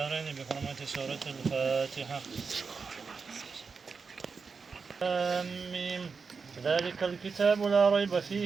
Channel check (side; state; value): left; quieter; 5.1 dB